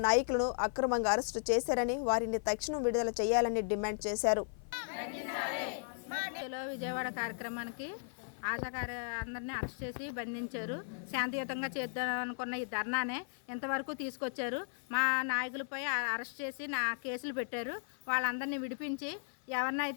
నాయకులను అక్రమంగా అరెస్టు చేశారని, వారిని తక్షణం విడుదల చేయాలని డిమాండ్ చేశారు. విజయవాడ కార్యక్రమానికి అందరినీ అరెస్ట్ చేసి బంధించారు. శాంతియుతంగా చేద్దాం అనుకున్న ఈ ధర్నానే ఇంతవరకు తీసుకొచ్చారు. మా నాయకులపై అరెస్ట్ చేసి కేసులు పెట్టారు. వాళ్ళందరినీ విడిపించి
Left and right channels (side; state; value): right; silent; 54 dB below the other